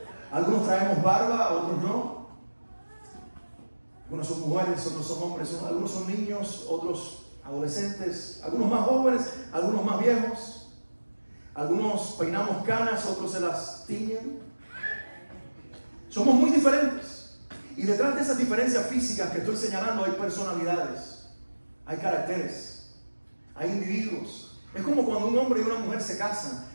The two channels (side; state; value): both; inverted; correlation -1.00